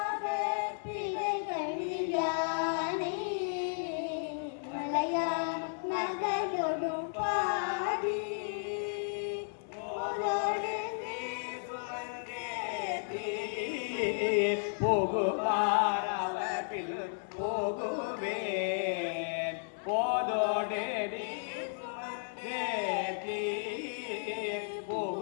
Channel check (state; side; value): silent; right; digital silence